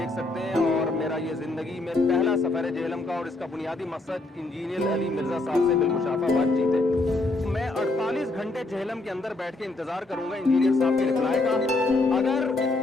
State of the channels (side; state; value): right; quieter; 3.0 dB